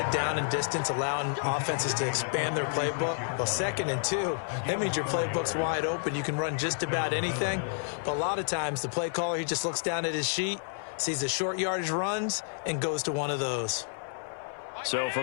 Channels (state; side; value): silent; right; 55 dB below the other